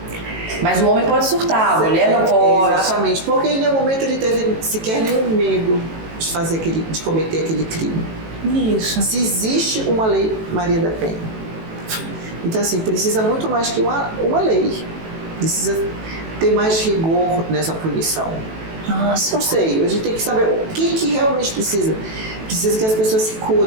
Mas o homem pode surtar, a mulher não pode. Exatamente, porque em nenhum momento ele teve sequer nenhum medo de cometer aquele crime. Isso. Se existe uma lei Maria da Penha. Então, assim, precisa muito mais que uma lei. Precisa ter mais rigor nessa punição. Nossa. Não sei, a gente tem que saber o que realmente precisa. Precisa que as pessoas se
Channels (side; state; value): left; late; 18 ms